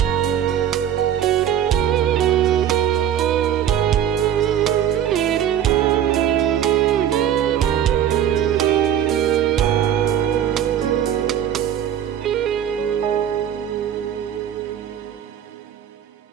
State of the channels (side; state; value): left; quieter; 10.0 dB